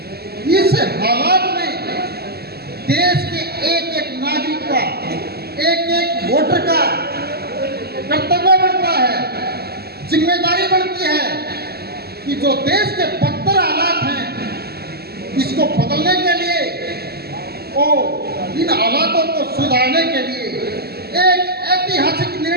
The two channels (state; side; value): late; left; 0.46 ms